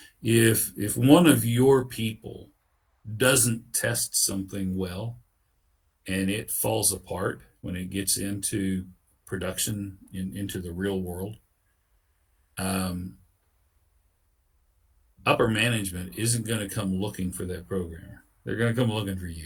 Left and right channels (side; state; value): both; identical; correlation 1.00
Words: If one of your people doesn't test something well and it falls apart when it gets into production, into the real world, upper management isn't going to come looking for that programmer. They're going to come looking for